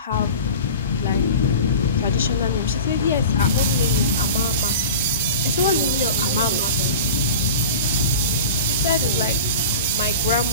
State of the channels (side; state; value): both; inverted; correlation -0.34